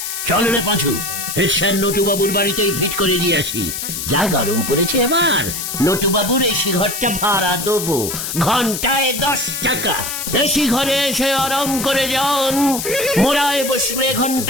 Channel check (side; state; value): left; noise; hiss, 5 dB below the sound